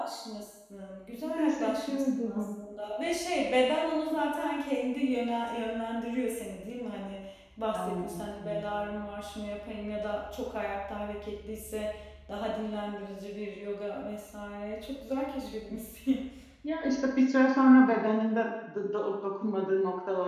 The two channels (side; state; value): both; identical; correlation 1.00